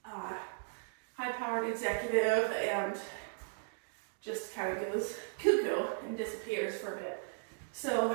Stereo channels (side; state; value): left; silent; digital silence